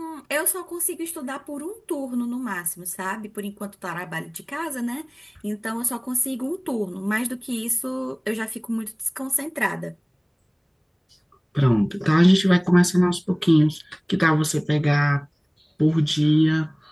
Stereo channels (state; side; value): identical; both; correlation 1.00